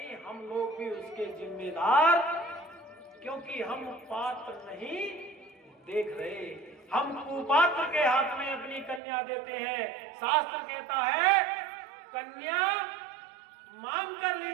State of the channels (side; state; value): left; drops out; at 9.0 s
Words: हम लोग भी उसके जिम्मेदार, क्योंकि हम पात्र नहीं देख रहे। हम कुपात्र के हाथ में अपनी कन्या देते हैं। शास्त्र कहता है कन्या मांग कर ली